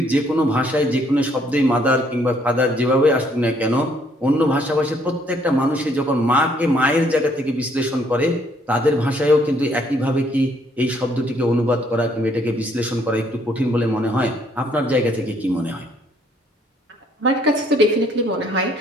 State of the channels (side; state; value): both; normal; correlation 0.66